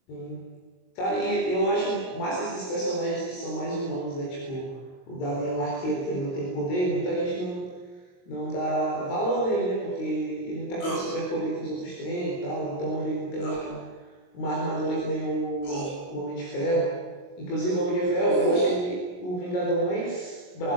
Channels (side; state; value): right; late; 22 ms